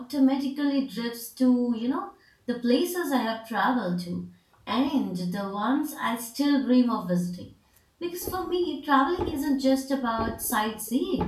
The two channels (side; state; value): both; identical; correlation 1.00